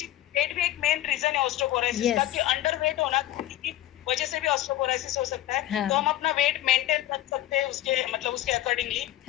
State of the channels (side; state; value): right; quieter; 14.2 dB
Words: एक मेन रीजन है ऑस्टियोपोरोसिस का, कि अंडर वेट होना की वजह से भी ऑस्टियोपोरोसिस हो सकता है। तो हम अपना वेट मेंटेन रख सकते हैं उसके अकॉर्डिंगली।